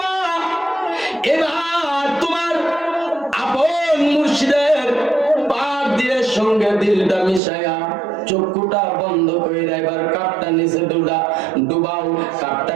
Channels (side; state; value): left; drops out; at 7.4 s